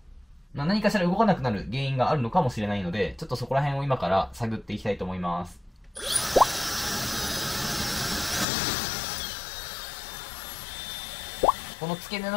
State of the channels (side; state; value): right; drops out; at 8.5 s